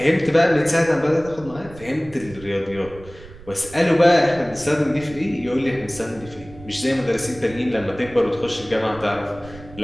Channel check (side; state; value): right; noise; rumble, 19 dB below the sound